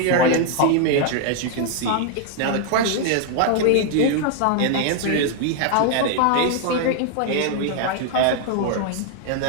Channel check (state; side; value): different; both; correlation 0.00